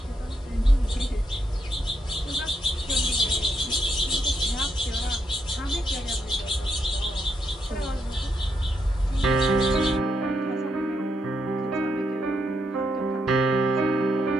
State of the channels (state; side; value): normal; both; correlation 0.79